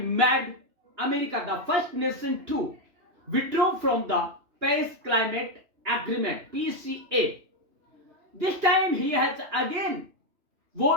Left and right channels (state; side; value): late; left; 2.9 ms